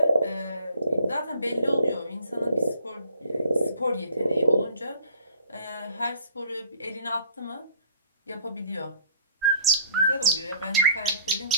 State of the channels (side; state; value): both; inverted; correlation -0.53